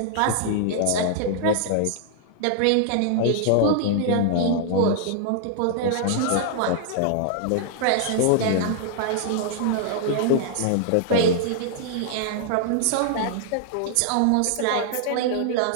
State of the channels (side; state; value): both; different; correlation -0.01